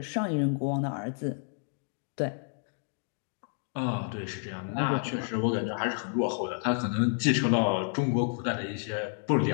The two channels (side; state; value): right; silent; 58 dB below the other